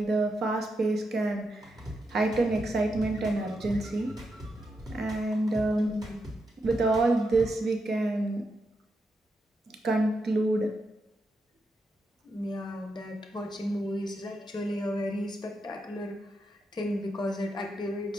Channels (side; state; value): both; normal; correlation 0.84